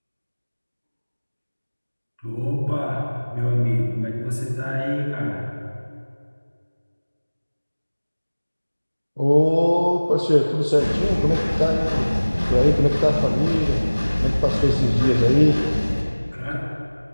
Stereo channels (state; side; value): inverted; both; correlation -1.00